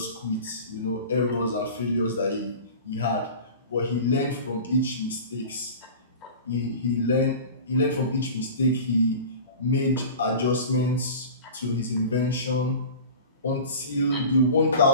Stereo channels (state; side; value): inverted; both; correlation -0.37